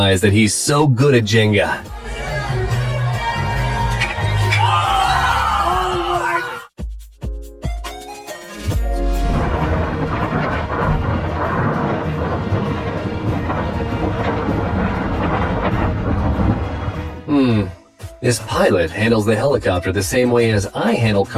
that he's so good at Jenga. This pilot handles the helicopter the same way as I handle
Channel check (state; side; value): identical; both; correlation 1.00